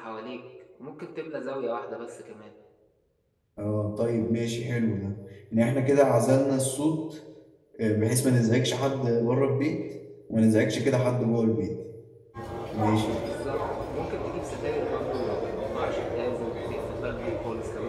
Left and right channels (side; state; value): both; identical; correlation 1.00